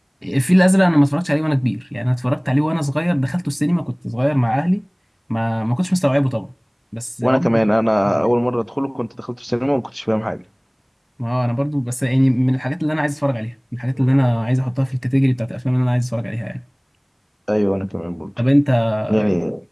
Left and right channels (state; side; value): identical; both; correlation 1.00